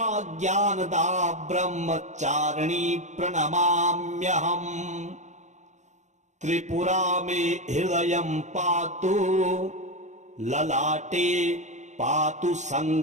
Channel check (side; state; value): left; late; 0.34 ms